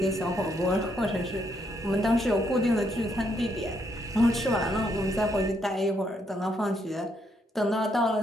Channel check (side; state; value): both; normal; correlation 0.75